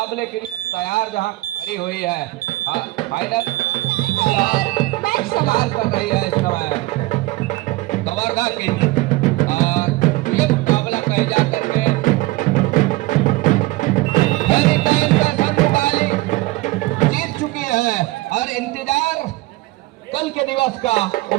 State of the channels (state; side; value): quieter; left; 20.0 dB